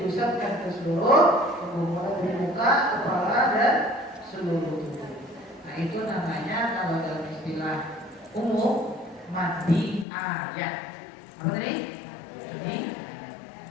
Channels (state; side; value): drops out; right; at 10.1 s